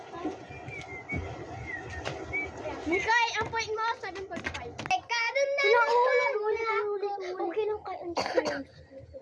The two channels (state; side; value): identical; both; correlation 1.00